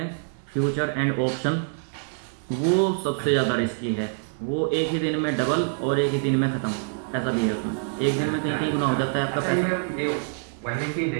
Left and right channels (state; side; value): silent; left; 60 dB below the other